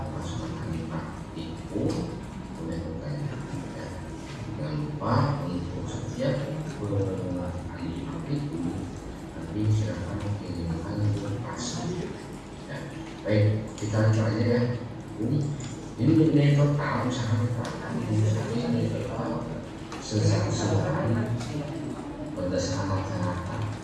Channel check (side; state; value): both; identical; correlation 1.00